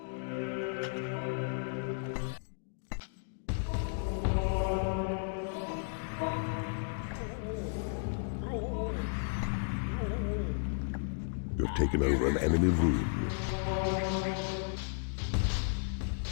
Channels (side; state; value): right; silent; digital silence